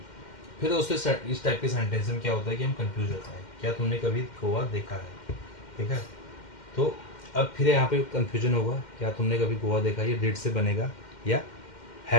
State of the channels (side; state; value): right; late; 2.1 ms